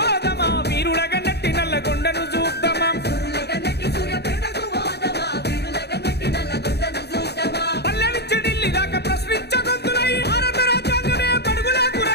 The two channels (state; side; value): late; right; 0.48 ms